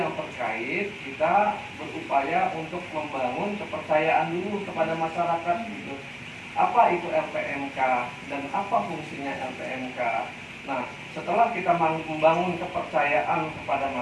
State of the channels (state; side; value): identical; both; correlation 1.00